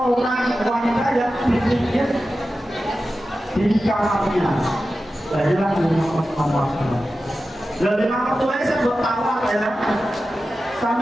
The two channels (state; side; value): normal; both; correlation 0.93